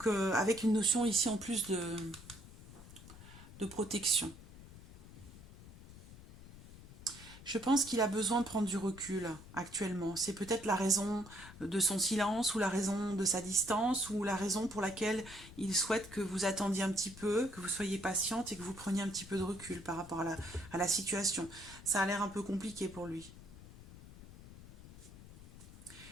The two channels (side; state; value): left; noise; rumble, 17 dB below the sound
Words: avec une notion ici en plus de protection. Je pense qu'il a besoin de prendre du recul actuellement. C'est peut-être la raison de son silence ou la raison de sa distance ou la raison pour laquelle il souhaite que vous attendiez un petit peu, que vous soyez patiente et que vous preniez un petit peu de recul par rapport à la situation. Ça a l'air un peu compliqué pour lui.